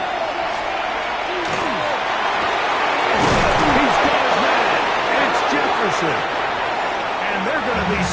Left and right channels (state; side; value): identical; both; correlation 1.00